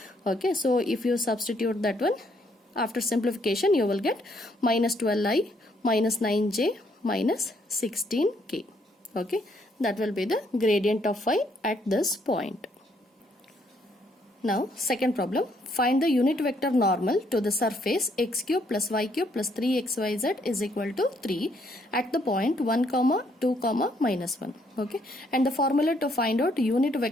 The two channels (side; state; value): both; normal; correlation 0.70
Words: Okay, so if you substitute that one, after simplification you will get minus 12i minus 9j minus 16k. Okay, that will be the gradient of phi at this point. Now second problem, find the unit vector normal to the surface x cube plus y cube plus 3xyz is equal to 3 at the point 1 comma 2 comma minus 1. Okay, and the formula to find out unit